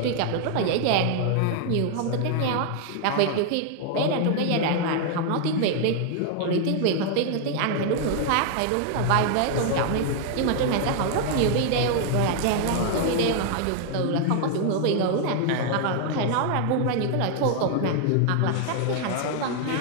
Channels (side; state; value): both; different; correlation 0.00